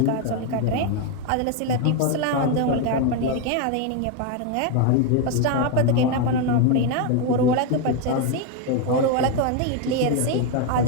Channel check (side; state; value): both; different; correlation 0.02